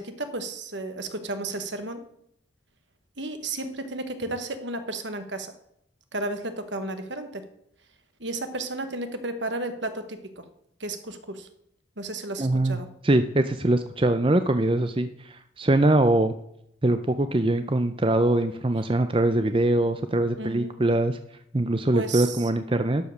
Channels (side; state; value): both; normal; correlation 0.67